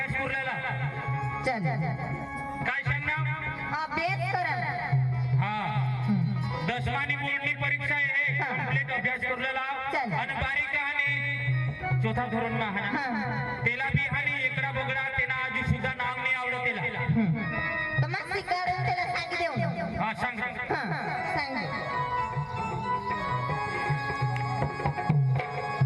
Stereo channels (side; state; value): both; identical; correlation 1.00